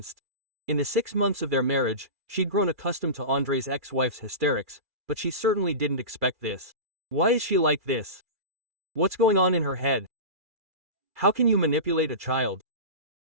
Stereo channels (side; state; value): left; late; 2.3 ms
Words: In the 6 months of their marriage, she'd grown accustomed to Andrei's ex-wife's hysterics, but she certainly didn't expect this. Why is she like this? What's going on in her head? How can you manipulate a child?